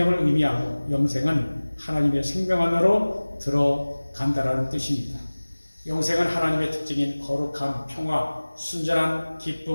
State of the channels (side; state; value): both; inverted; correlation -1.00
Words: 의미하고 영생은 하나님의 생명 안으로 들어간다라는 뜻입니다. 영생은 하나님의 특징인 거룩함, 평화, 순전한